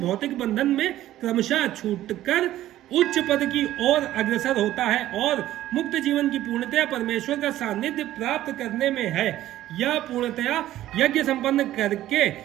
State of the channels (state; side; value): quieter; left; 13.9 dB